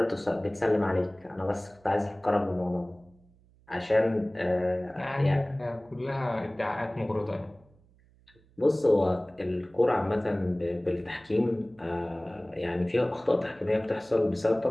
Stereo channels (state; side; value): noise; right; hum, 30 dB below the sound